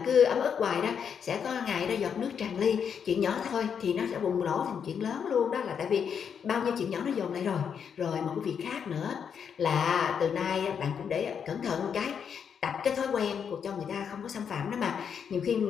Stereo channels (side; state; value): right; quieter; 7.3 dB